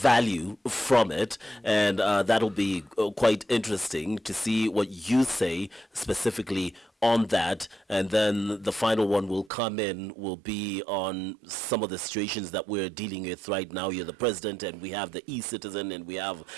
from it, and that'll be quite interesting to see what you say specifically on that. And then the final one will come in, will be on some of the situations that we're dealing with right now. You're the president, and we have the e-citizen, and we have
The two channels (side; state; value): left; drops out; at 9.5 s